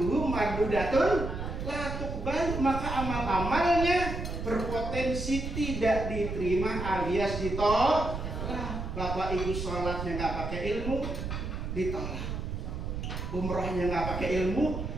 mardudatun la tuqbal, maka amal-amalnya berpotensi tidak diterima alias ditolak. Bapak Ibu sholatnya nggak pakai ilmu, ditolak. Umrohnya nggak pakai ilmu,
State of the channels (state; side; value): noise; right; rumble, 5 dB below the sound